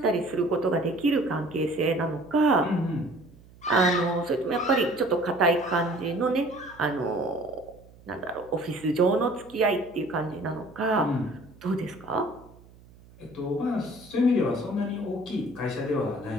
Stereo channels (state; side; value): noise; right; hum, 24 dB below the sound